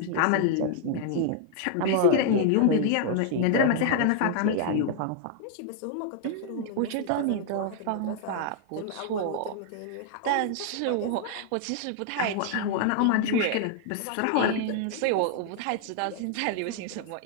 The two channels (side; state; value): both; different; correlation 0.00